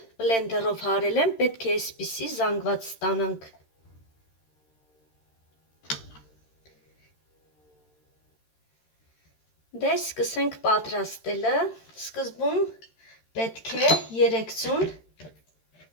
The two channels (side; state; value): right; late; 13 ms